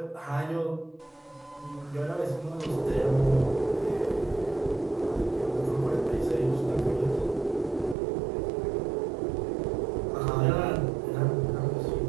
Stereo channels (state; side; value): drops out; left; at 8.0 s